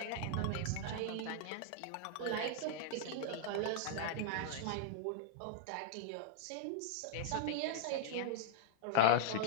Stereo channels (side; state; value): both; different; correlation -0.02